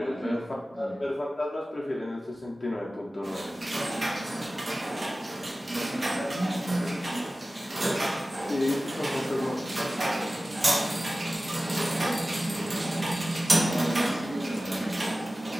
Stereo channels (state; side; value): normal; both; correlation 0.96